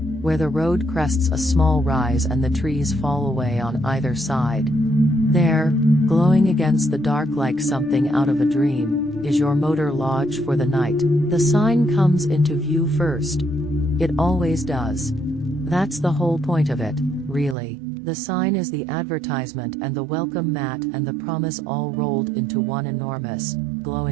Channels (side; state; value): left; drops out; at 17.6 s